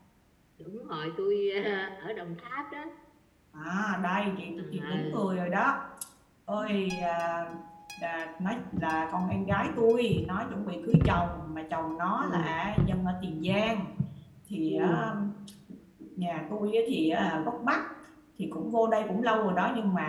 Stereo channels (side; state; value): both; identical; correlation 1.00